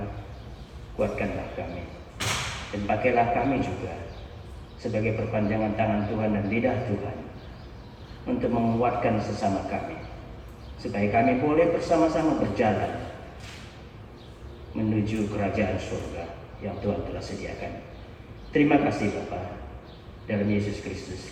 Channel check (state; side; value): identical; both; correlation 1.00